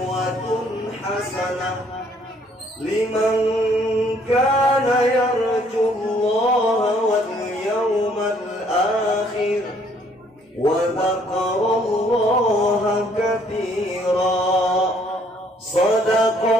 hasanah liman kana yarjullaha wal yawmal akhir wa dzakarallaha katsira.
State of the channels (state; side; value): normal; both; correlation 0.64